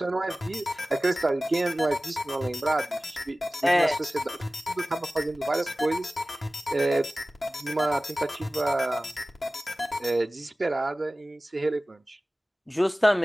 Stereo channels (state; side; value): normal; both; correlation 0.97